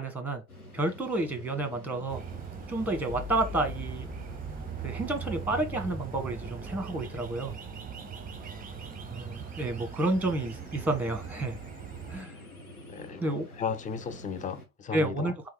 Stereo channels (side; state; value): both; normal; correlation 0.50